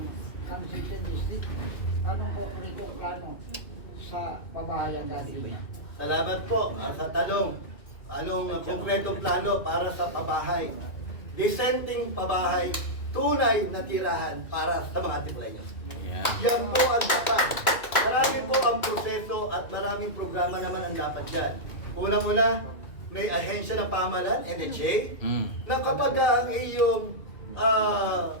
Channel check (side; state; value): right; late; 2.3 ms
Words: ng 2nd District, anong po rin yung plano sa pabahayan natin? Salamat po sa tanong. Anong konkretong plano para sa pabahay? Dissenting pabahay, tunay na tirahan para sa mga Antipoleños. Ayan. Yan po ang dapat. Marami po ang proseso at maraming programa naman ang dapat dyan. Unang-una, may ahensya ng pamahalaan, NHA, na kapag ang iyong